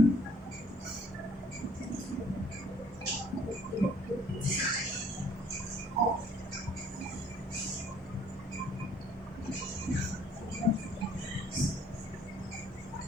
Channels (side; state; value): both; normal; correlation 0.59